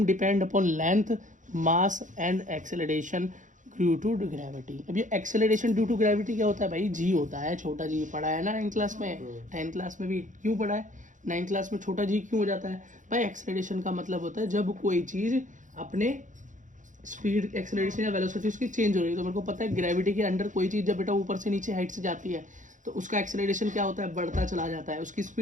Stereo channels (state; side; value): late; left; 0.37 ms